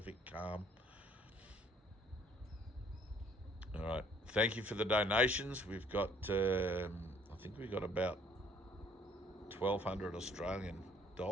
calm. All right. Thank you for the donations. We've got, I think we've got about 1,200 Australian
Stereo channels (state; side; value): normal; both; correlation 0.59